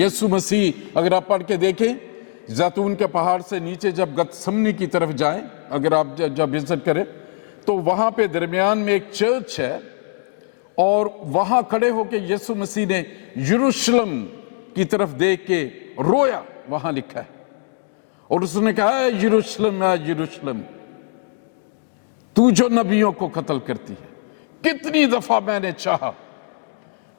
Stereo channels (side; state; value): right; silent; digital silence